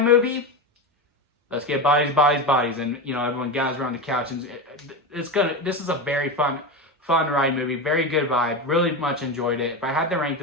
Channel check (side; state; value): both; normal; correlation 0.19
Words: movie. Let's get Bodies, Bodies, Bodies, and you know, everyone gathers around the couch, and this is a very fun ride movie, very good vibe, really much enjoyed it. If I had to rank